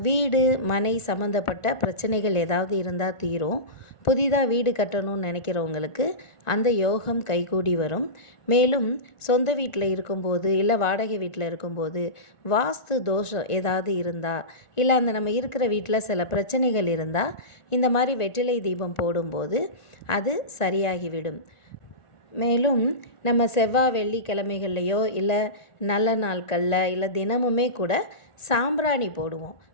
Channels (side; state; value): right; late; 1.4 ms